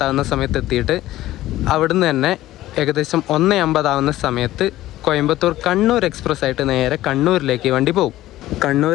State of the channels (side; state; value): right; quieter; 15.3 dB